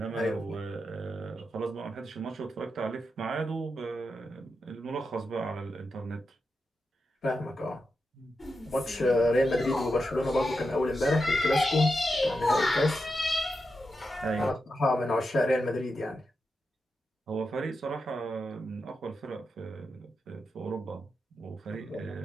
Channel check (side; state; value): both; normal; correlation 0.87